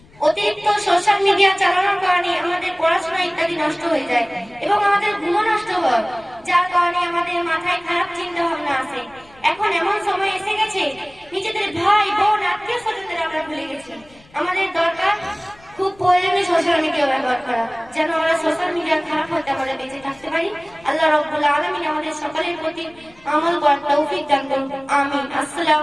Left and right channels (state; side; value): noise; left; rumble, 27 dB below the sound